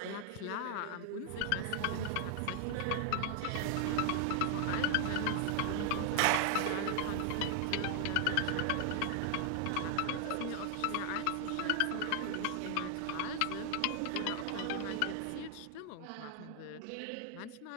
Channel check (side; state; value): both; different; correlation 0.00